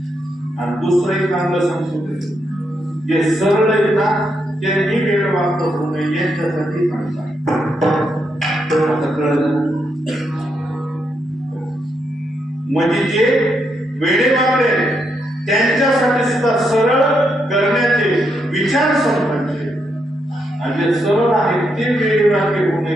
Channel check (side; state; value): both; normal; correlation 0.80